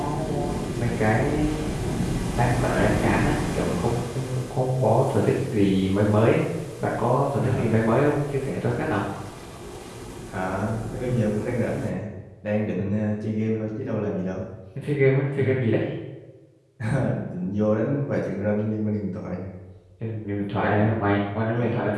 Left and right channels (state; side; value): identical; both; correlation 1.00